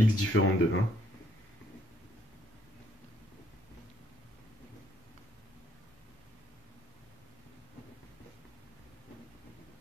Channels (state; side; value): normal; both; correlation 0.69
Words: différentes de 1.